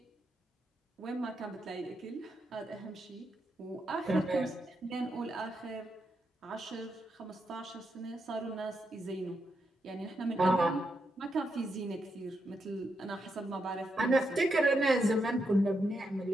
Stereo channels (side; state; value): both; normal; correlation 0.83